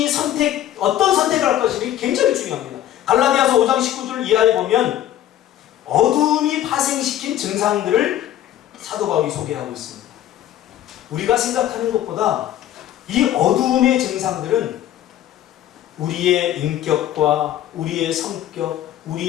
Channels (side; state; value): right; quieter; 12.2 dB